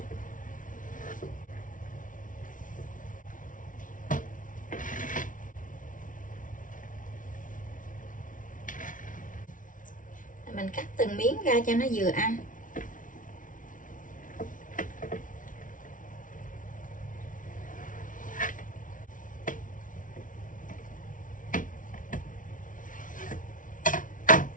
Mình cắt từng miếng ra cho nó vừa ăn.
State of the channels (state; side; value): late; right; 0.38 ms